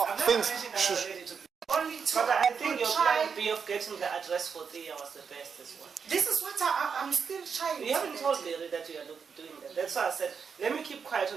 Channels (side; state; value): left; quieter; 6.2 dB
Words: things. Only two. But I think your plan B of getting the address for Thea was the best as well. This is what I'm still trying. You haven't told Larry that you are doing that. That's why I said, let me keep quiet